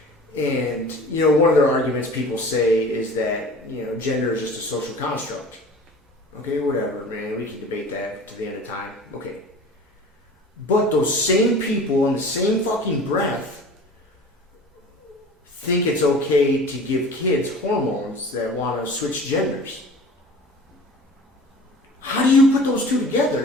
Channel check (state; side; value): normal; both; correlation 0.41